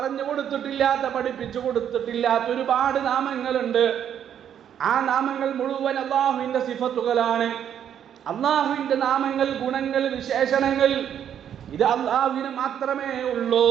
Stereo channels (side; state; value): left; quieter; 9.4 dB